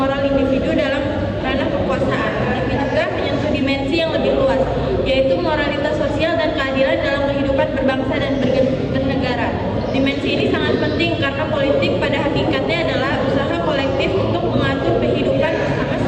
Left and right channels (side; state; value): both; identical; correlation 1.00